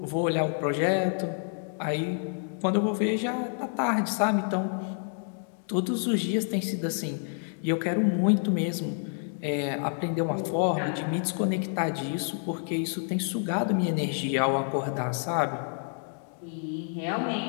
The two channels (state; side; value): silent; right; 59 dB below the other